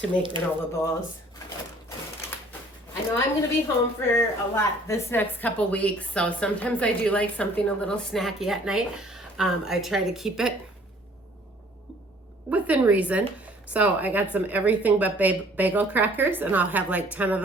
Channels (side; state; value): both; normal; correlation 0.56